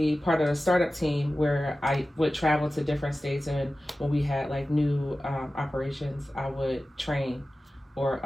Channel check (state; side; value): normal; both; correlation 0.95